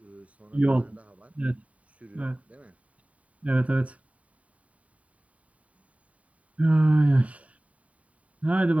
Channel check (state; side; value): late; left; 0.067 ms